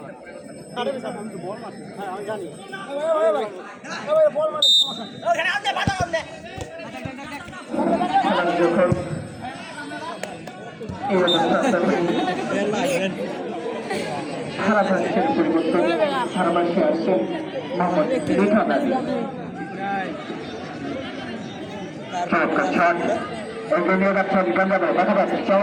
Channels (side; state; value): both; identical; correlation 1.00